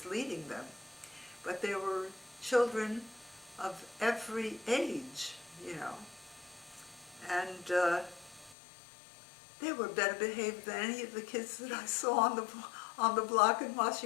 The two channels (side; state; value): right; drops out; at 8.6 s